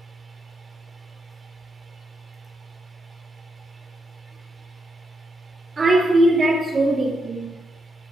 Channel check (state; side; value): normal; both; correlation 0.82